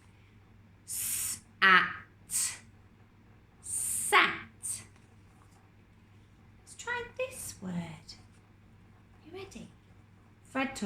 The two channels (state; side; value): identical; both; correlation 1.00